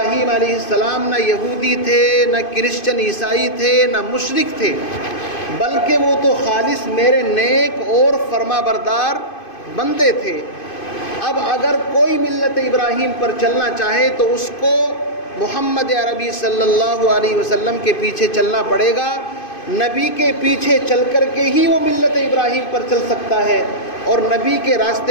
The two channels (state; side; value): late; right; 2.5 ms